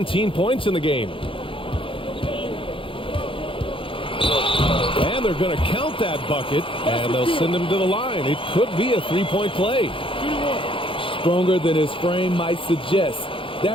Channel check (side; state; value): right; late; 0.25 ms